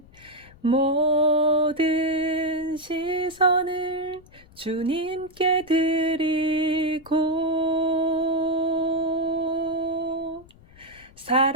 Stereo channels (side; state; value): left; noise; rumble, 25 dB below the sound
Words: 모든 시선을 주님께 드리고